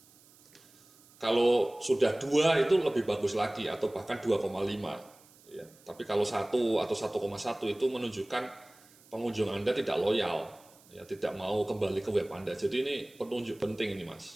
Kalau sudah 2 itu lebih bagus lagi, atau bahkan 2,5. Ya, tapi kalau 1 atau 1,1 itu menunjukkan pengunjung Anda tidak loyal, ya, tidak mau kembali ke web Anda. Jadi ini penunjuk penting ini,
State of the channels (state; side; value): noise; right; hiss, 27 dB below the sound